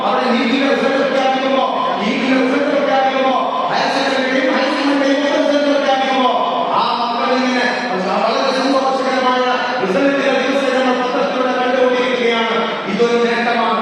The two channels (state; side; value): identical; both; correlation 1.00